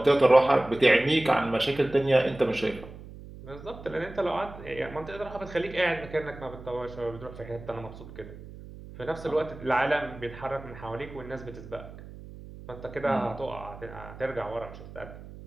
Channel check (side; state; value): right; noise; hum, 15 dB below the sound